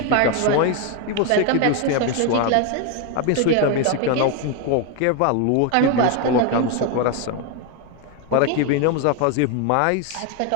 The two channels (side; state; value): both; different; correlation 0.01